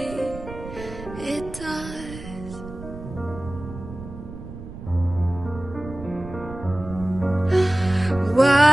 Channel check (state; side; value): noise; right; rumble, 13 dB below the sound